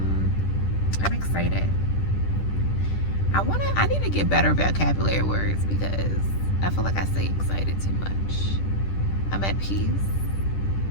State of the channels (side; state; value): right; late; 10 ms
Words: excited. I need to get better vocabulary words because I feel like I say excited too much. I'm at peace.